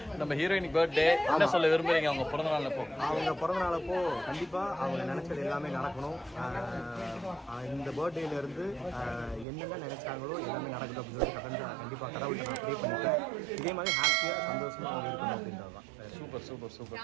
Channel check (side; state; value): left; drops out; at 9.5 s